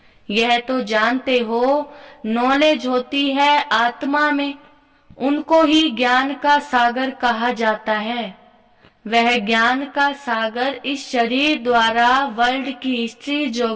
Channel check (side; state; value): both; identical; correlation 1.00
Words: यह तो जानते हो, नॉलेज होती है आत्मा में, उनको ही ज्ञान का सागर कहा जाता है। वह ज्ञान का सागर इस शरीर द्वारा वर्ल्ड की हिस्ट्री